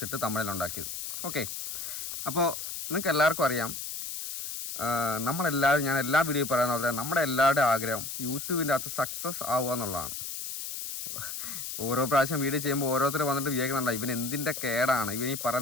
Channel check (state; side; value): noise; left; hiss, 6 dB below the sound